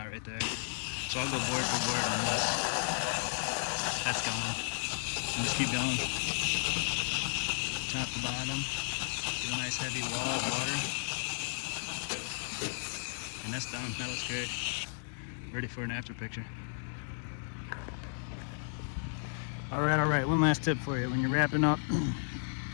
right there. So I'll go board for board on this. That's going. And just keep going. Top to bottom. Get a nice heavy wall of water. And that's done. That looks great. Ready for an after picture. All right. One last tip for you. When you're wrapping up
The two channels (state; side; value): silent; right; digital silence